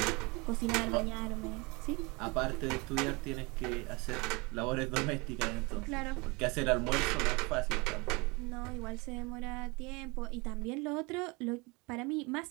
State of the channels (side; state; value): left; quieter; 27.1 dB